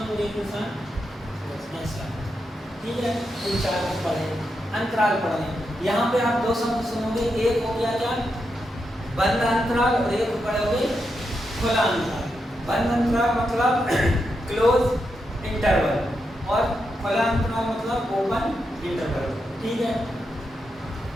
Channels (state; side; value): normal; both; correlation 0.85